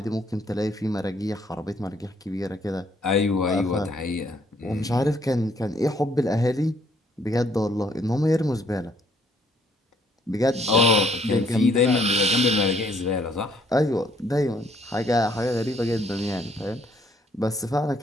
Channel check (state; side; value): normal; both; correlation 0.66